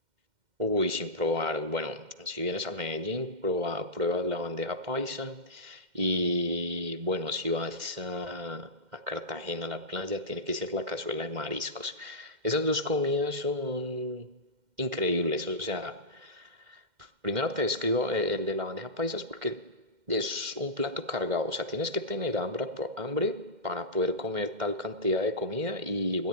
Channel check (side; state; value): left; late; 2.1 ms